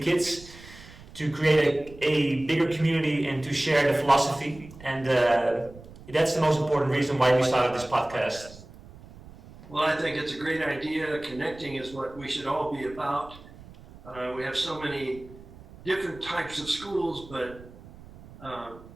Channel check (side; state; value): right; noise; rumble, 19 dB below the sound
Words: to create a bigger community and to share the philosophy. And that's the most important reason why we started this podcast. Well, I think it's a great idea. Connecting is what we should all be about. We have so many different types of schools, but